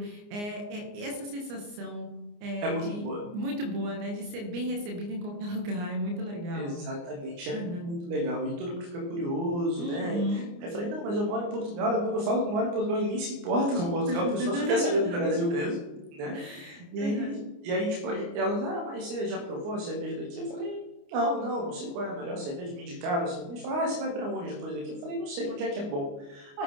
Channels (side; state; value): left; late; 29 ms